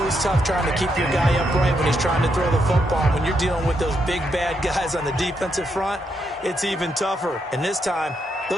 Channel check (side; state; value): both; normal; correlation 0.80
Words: tough trying to keep your guy upright when he's trying to throw the football. When you're dealing with those big, bad guys on the defensive front, it's even tougher. And this time,